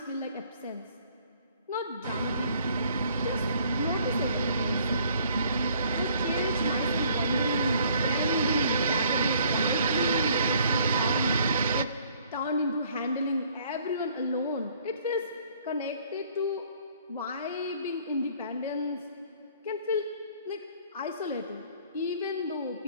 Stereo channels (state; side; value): inverted; both; correlation -0.60